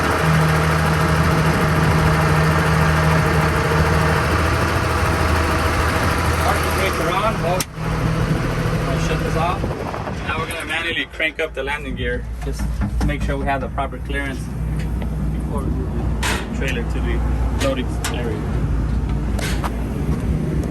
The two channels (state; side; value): identical; both; correlation 1.00